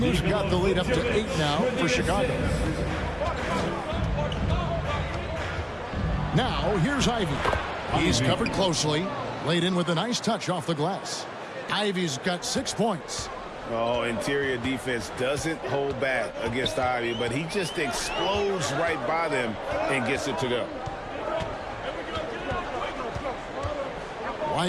got the lead up to 8 now for Chicago. Now, here's Ivy. He's covered closely. Laid in with a nice touch off the glass. Ivy's got 6 points. Oh, interior defense doesn't hold back against Ivy, but he just explodes right by them and gets it to go.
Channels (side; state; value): both; identical; correlation 1.00